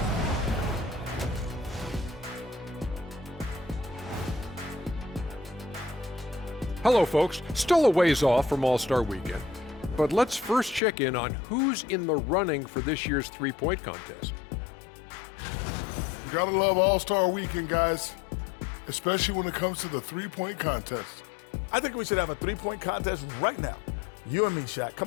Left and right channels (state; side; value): drops out; right; at 10.8 s